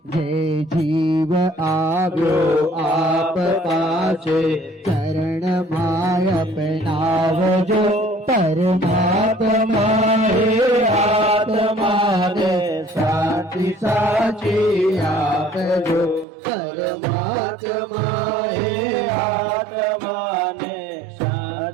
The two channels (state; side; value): drops out; left; at 16.2 s